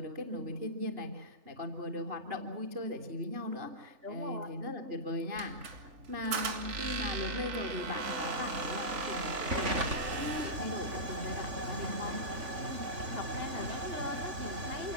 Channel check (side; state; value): left; late; 3.4 ms